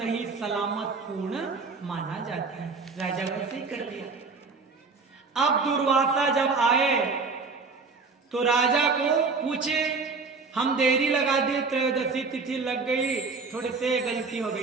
सलामत पूर्ण माना जाता है। राजा वैसे ही कर लिया। अब दुर्वासा जब आए तो राजा को पूछे, हम देरी लगा दिए, त्रयोदशी तिथि लग गई, थोड़े से गलती हो गई,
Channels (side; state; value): left; quieter; 4.4 dB